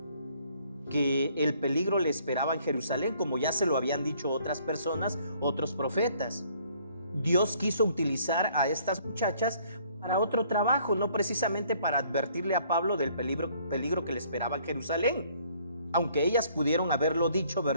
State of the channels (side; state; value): both; inverted; correlation -0.62